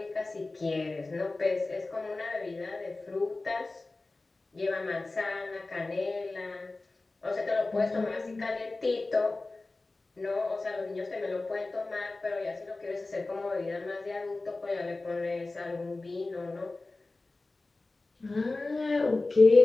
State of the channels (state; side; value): quieter; right; 3.3 dB